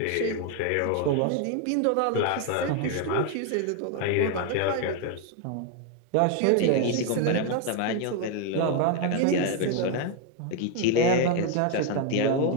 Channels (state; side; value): different; both; correlation 0.01